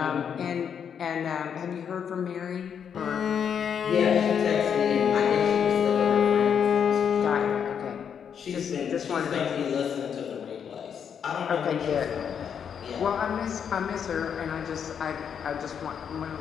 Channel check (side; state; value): right; quieter; 7.7 dB